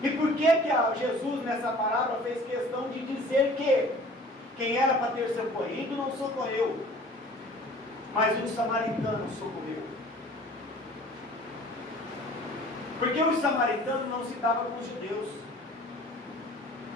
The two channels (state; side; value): normal; both; correlation 0.48